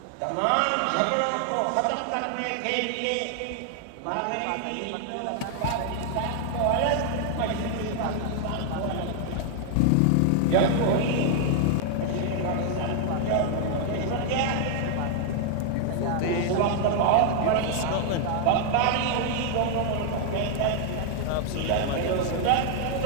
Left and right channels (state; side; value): different; both; correlation 0.00